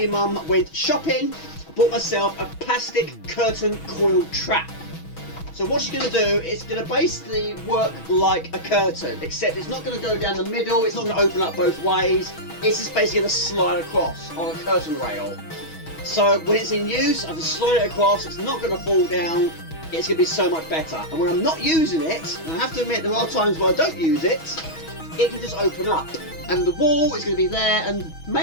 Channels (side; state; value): right; late; 6.2 ms